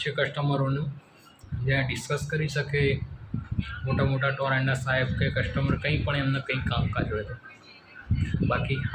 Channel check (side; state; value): both; identical; correlation 1.00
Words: છે કસ્ટમરોનું, જ્યાં ડિસ્કસ કરી શકે મોટા ટોરેન્ટના સાહેબ કે કસ્ટમર કંઈ પણ એમને કંઈ કામકાજ હોય તો. બાકી